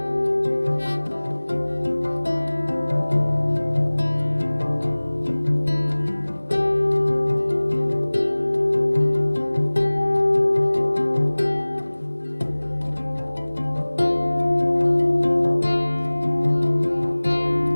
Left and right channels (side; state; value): both; inverted; correlation -1.00